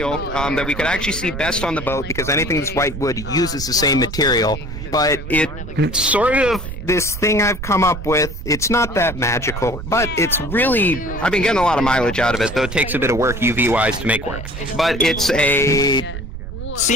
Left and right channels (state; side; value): noise; right; rumble, 9 dB below the sound